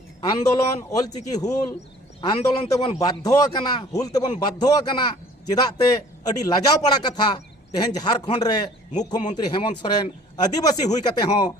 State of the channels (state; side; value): normal; both; correlation 0.52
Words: आंदोलन ऑलचिकी हुल आंदोलन तेबन बाध्य हुल तेबन बाध्य चेदाते अड़ी लाजाव पड़ा कथा तेहेन झारखंड रे मुख्यमंत्री हेमंत सोरेन आदिवासी हुई कते हो